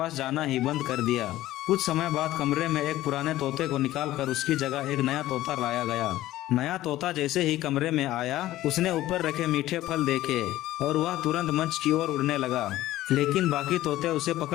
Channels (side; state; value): right; quieter; 15.2 dB